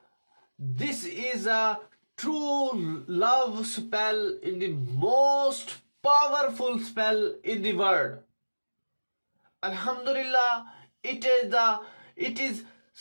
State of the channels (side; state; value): both; inverted; correlation -1.00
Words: this is a true love spell in the most powerful spell in the world. Alhamdulillah, it is